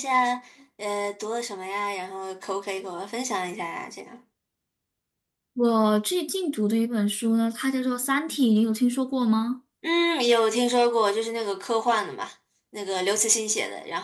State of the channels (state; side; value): identical; both; correlation 1.00